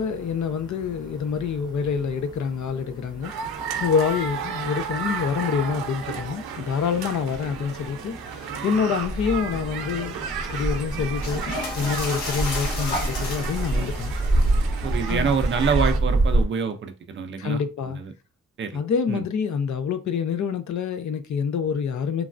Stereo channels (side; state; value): both; normal; correlation 0.49